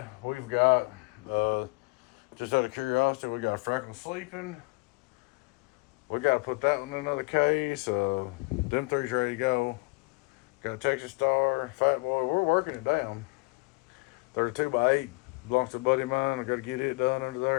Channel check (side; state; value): right; quieter; 28.1 dB